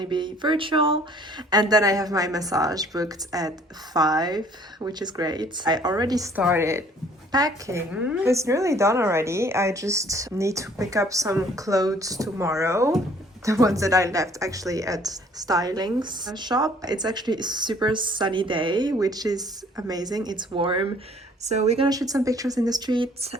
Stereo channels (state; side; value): normal; both; correlation 0.57